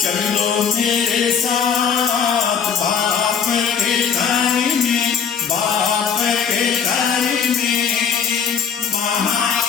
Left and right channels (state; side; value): quieter; right; 7.0 dB